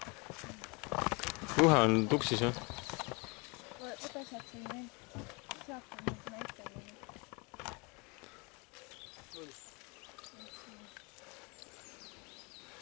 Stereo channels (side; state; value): right; quieter; 29.7 dB